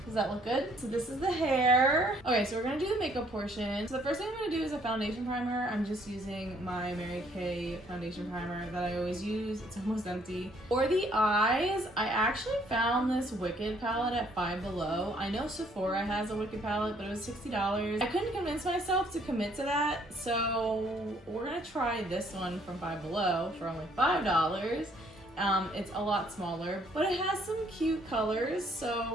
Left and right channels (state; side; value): normal; both; correlation 0.64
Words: Does that look good? So this is the hair. Okay, so we're gonna do the makeup portion. So the first thing I'm gonna do is a foundation primer. I'm just using my Mary Kay foundation primer that I always use. It's almost empty. For the eyes, I actually found this Wicked palette at Five Below. I know Sephora has a Wicked palette, but it was $60. I couldn't convince myself to commit to that, so we're gonna try this one from Five Below for only $5. It's a lot smaller, but it has some cute colors, so